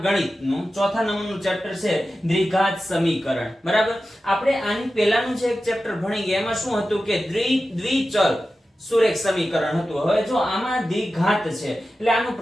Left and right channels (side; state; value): both; normal; correlation 0.93